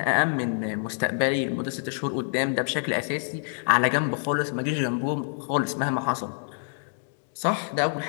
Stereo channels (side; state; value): right; silent; digital silence